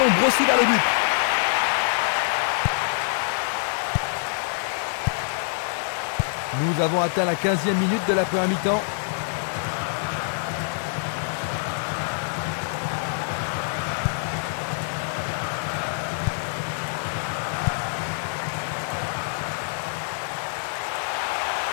brossé vers le but. Nous avons atteint la 15e minute de la première mi-temps.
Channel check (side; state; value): right; silent; digital silence